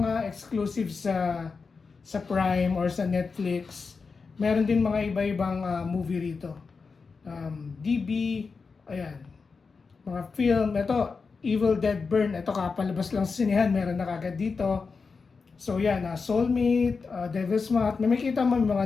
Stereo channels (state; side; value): quieter; right; 4.8 dB